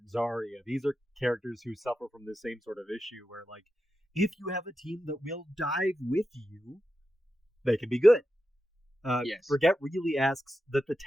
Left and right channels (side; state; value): both; normal; correlation 0.89